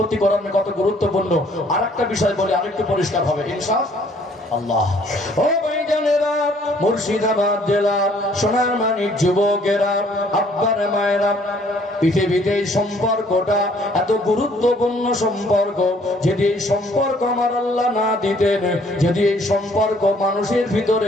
করানো কত গুরুত্বপূর্ণ। আর একটা বিষয় বলি, আরেকটু পরিষ্কার হবে ইনশাআল্লাহ। ও ভাইজানেরা, মুর্শিদাবাদ জেলার সোনার মানিক যুবকেরা, আব্বার মায়েরা, পৃথিবীতে এই সম্পর্কটা এত গুরুত্বপূর্ণ সম্পর্ক। যদি এই সম্পর্ক আমার আল্লাহ না দিতেন, যদি এই সম্পর্ক মানুষের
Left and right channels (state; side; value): normal; both; correlation 0.61